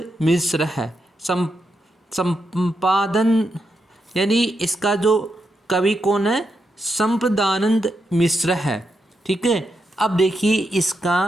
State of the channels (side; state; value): both; normal; correlation 0.84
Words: मिश्र है। संपादन यानी इसका जो कवि कौन है? संपदानंद मिश्र है। ठीक है, अब देखिए इसका